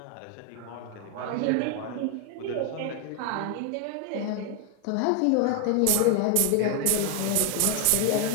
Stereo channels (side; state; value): both; different; correlation 0.00